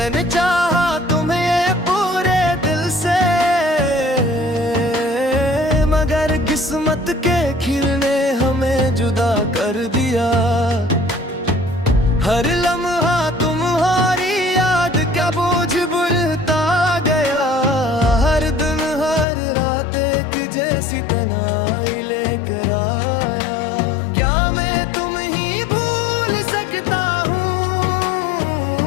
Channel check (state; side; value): drops out; right; at 19.2 s